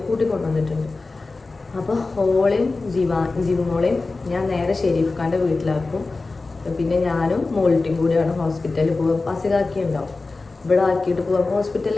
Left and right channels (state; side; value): quieter; right; 3.6 dB